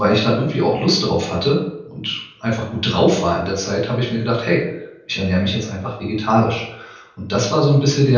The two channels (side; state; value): both; identical; correlation 1.00